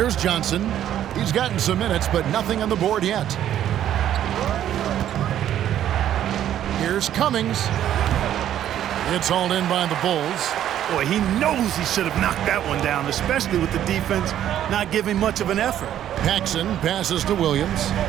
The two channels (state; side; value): quieter; left; 11.1 dB